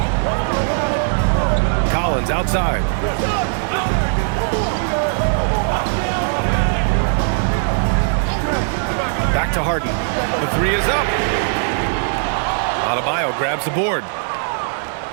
Collins outside. Back to Harden. The 3 is up. Adebayo grabs the board.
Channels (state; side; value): silent; left; 59 dB below the other